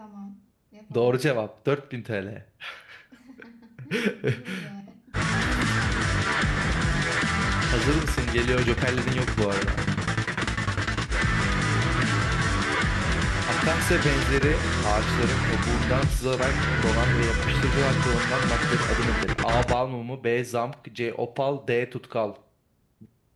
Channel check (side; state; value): both; identical; correlation 1.00